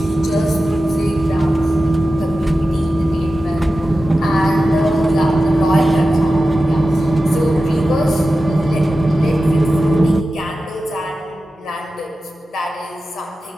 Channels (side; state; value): both; normal; correlation 0.93